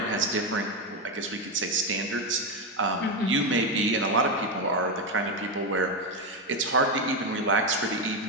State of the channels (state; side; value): normal; both; correlation 0.09